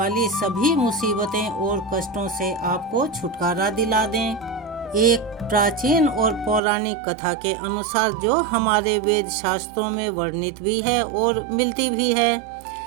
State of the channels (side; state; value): left; drops out; at 6.6 s